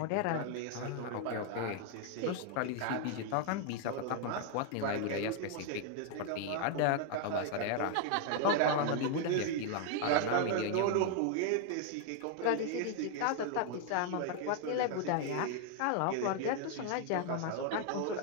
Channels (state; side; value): different; both; correlation 0.00